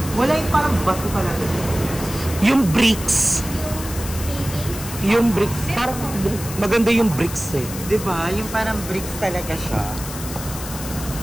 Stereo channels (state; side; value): noise; left; hiss, 10 dB below the sound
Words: Wala yung parang bato talaga. Yung bricks. Yung bricks. Parang maganda yung bricks eh. Diba? Yung parang bricks talaga siya.